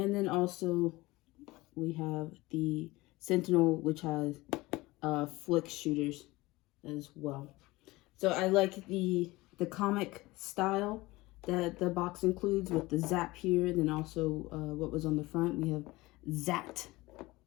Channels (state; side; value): quieter; right; 20.5 dB